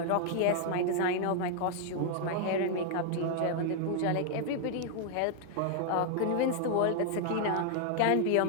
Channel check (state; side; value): different; both; correlation 0.00